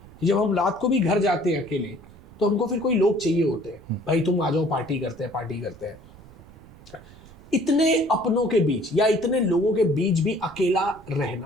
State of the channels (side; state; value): right; noise; rumble, 22 dB below the sound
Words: जब हम रात को भी घर जाते हैं अकेले तो हमको फिर कोई लोग चाहिए होते हैं, भाई तुम आ जाओ, पार्टी करते हैं, पार्टी करते हैं। इतने अपनों के बीच या इतने लोगों के बीच भी अकेला